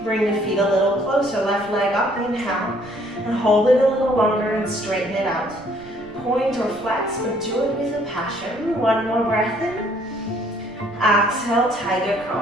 Bring the feet a little closer, left leg up, inhale, and hold it a little longer and straighten it out. Point or flex, but do it with a passion. 1 more breath in. Exhale, tiger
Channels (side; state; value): right; noise; rumble, 22 dB below the sound